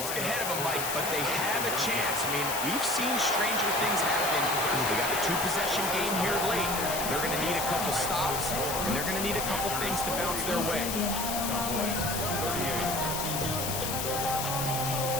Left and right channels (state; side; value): noise; left; hiss, 3 dB below the sound